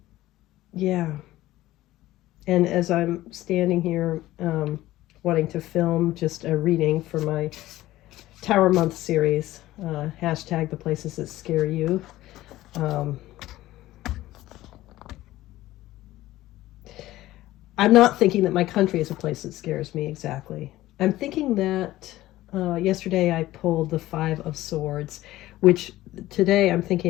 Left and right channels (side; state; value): right; quieter; 16.0 dB